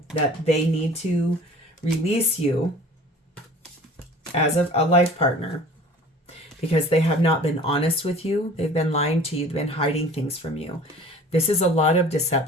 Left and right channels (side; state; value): both; normal; correlation 0.45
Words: that they need to release you as a life partner because they have not been honest with you. They've been lying to you. They've been hiding things from you. This is a lot of